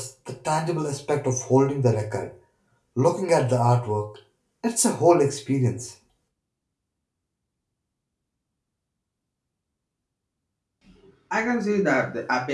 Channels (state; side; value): identical; both; correlation 1.00